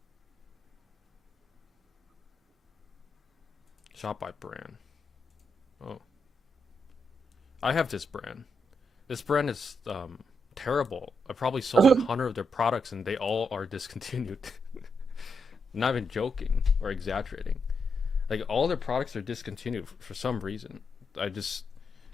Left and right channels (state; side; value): normal; both; correlation 0.82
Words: Shop by brand. Oh, I have this brand. This brand is terrible. I probably sold 100 of their products and they all are discontinued. Not even joking or exaggerating. Like all their products are discontinued for some reason.